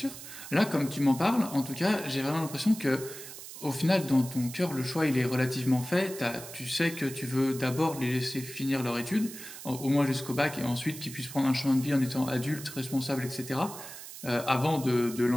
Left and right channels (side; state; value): right; noise; hiss, 13 dB below the sound